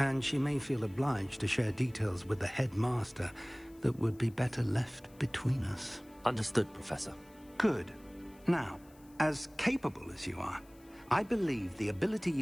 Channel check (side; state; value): left; noise; hiss, 28 dB below the sound